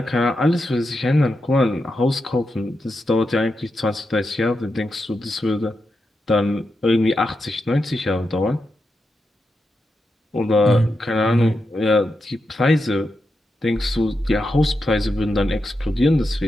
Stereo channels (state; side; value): normal; both; correlation 0.87